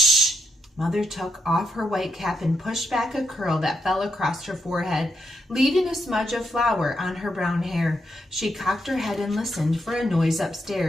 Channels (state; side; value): normal; both; correlation 0.80